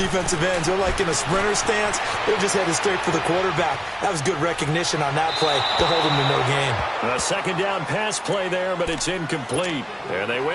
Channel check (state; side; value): identical; both; correlation 1.00